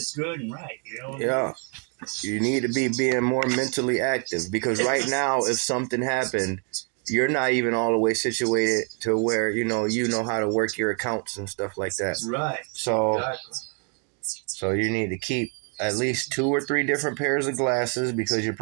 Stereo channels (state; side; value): quieter; left; 38.0 dB